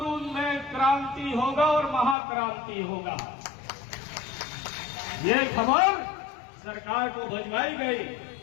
में क्रांति होगा और महाक्रांति होगा। ये खबर सरकार को भिजवाई गई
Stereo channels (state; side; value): drops out; right; at 2.1 s